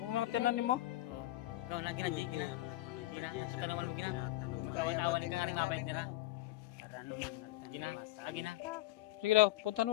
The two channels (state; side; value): quieter; right; 16.6 dB